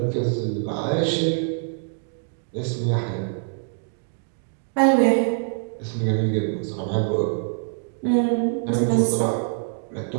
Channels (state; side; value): silent; left; digital silence